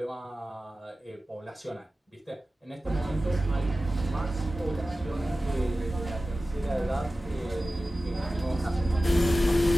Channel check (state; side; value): normal; both; correlation 0.95